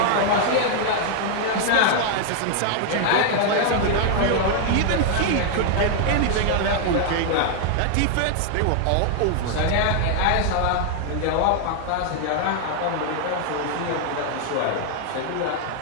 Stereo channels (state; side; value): different; both; correlation 0.00